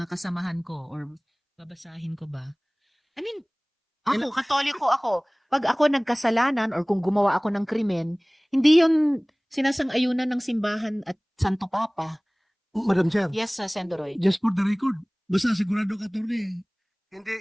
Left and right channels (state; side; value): identical; both; correlation 1.00